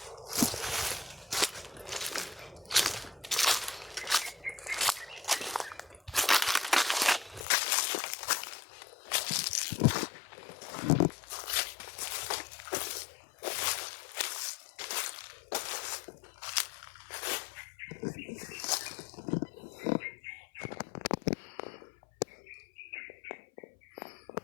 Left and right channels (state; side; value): drops out; right; at 7.5 s